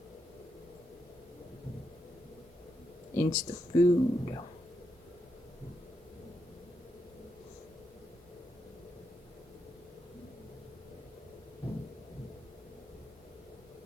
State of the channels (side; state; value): both; normal; correlation 0.82